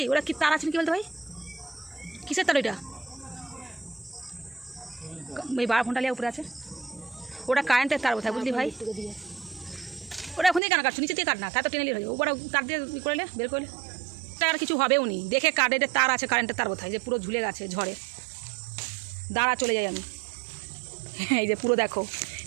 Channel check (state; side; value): drops out; left; at 10.6 s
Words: ওরা কি তার আছে কি বলতো ভাই কিসের তার ওইটা ওই 12 ঘন্টা লিয়ে উপরে আছে ওটা কারেন্টের তার কোথায় বুঝলি ভাই ওটা এখন দিয়ে কেন কাটছো নিচে দিয়ে কাট না তার তো টেনে নিয়ে হয়ে যাবে ওটা তার দিয়ে ই করলে বের করলে আর কিছু হবেও নি দেখে কারেন্টের তার আছে কারেন্টের তার কোথায় যে পুরো ঝুলে গেছে ঝড়ে দাঁড়া চলে যাই আমি এই যে পুরো দেখো